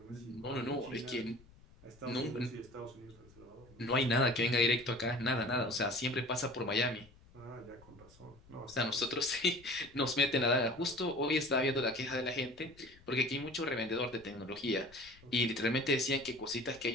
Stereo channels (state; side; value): noise; left; rumble, 25 dB below the sound